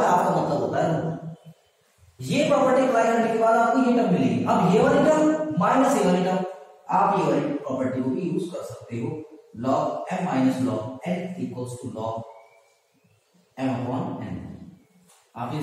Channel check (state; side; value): identical; both; correlation 1.00